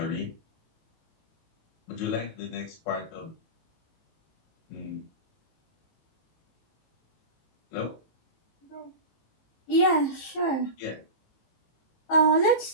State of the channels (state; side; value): late; right; 19 ms